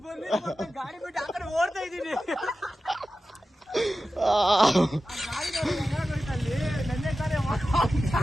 ಗಾಡಿ ಬಿಟ್ಟು ಆ ಕಡೆ ಓಡ್ತಾ ಇದ್ದೀನಿ.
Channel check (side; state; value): both; normal; correlation 0.93